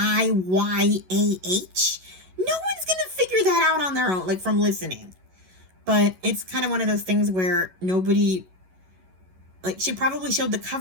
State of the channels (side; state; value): left; late; 11 ms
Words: No one's gonna figure that out on their own, like, from listening. But it's kind of one of those things where nobody, like, she probably showed the